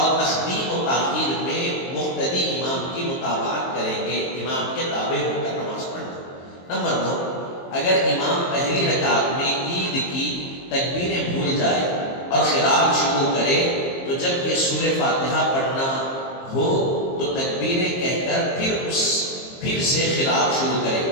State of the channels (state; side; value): late; right; 22 ms